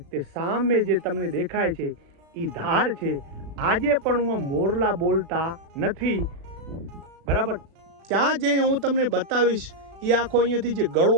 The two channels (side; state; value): left; late; 36 ms